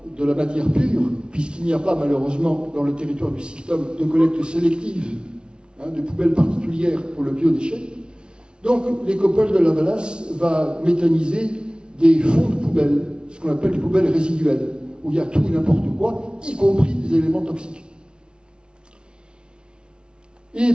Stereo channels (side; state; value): left; late; 0.056 ms